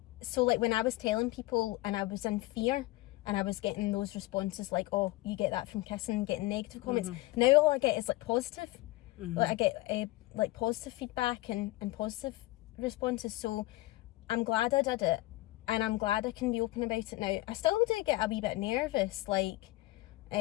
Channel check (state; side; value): quieter; right; 19.5 dB